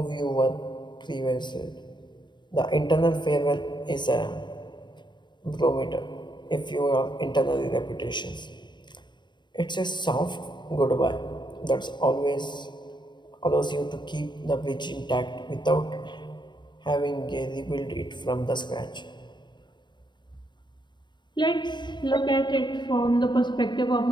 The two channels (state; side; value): late; right; 0.22 ms